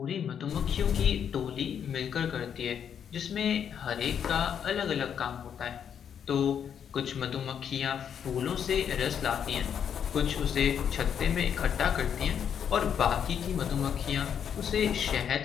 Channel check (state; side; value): quieter; right; 8.2 dB